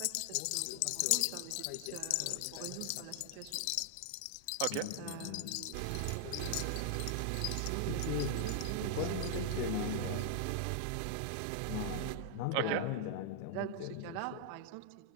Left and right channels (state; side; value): different; both; correlation 0.00